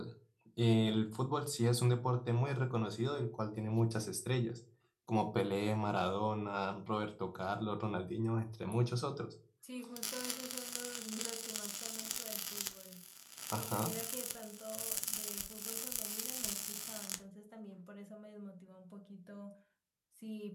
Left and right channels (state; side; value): identical; both; correlation 1.00